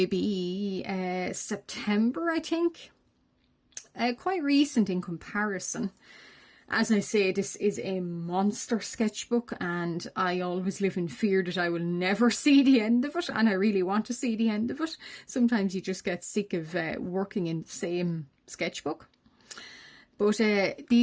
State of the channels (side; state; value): both; identical; correlation 1.00